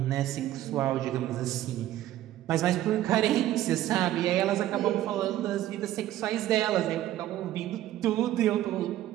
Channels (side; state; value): left; quieter; 13.6 dB